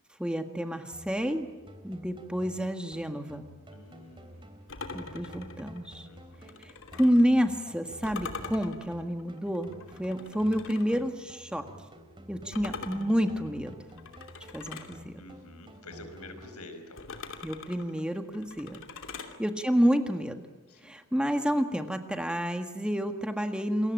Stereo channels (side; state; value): both; normal; correlation 0.92